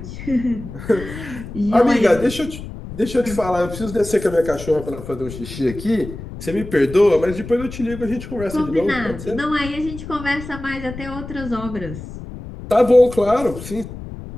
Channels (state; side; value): noise; left; rumble, 11 dB below the sound